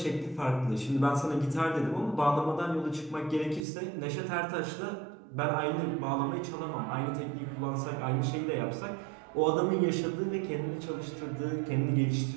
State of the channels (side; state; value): left; drops out; at 3.7 s